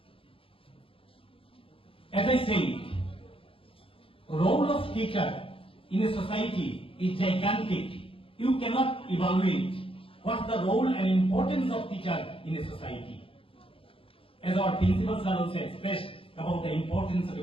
As I said, role of teacher in a society is gigantic. You cannot evaluate what's the role and importance of teacher in a society. As our principals are also expressed about the importance of a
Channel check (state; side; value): late; right; 0.26 ms